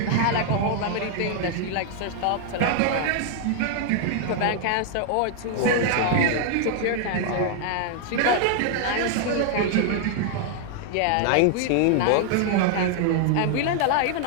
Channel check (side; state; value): both; different; correlation 0.00